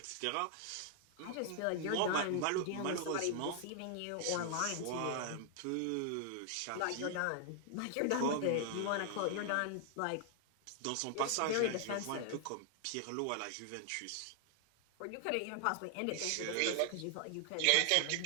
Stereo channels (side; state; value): both; different; correlation 0.00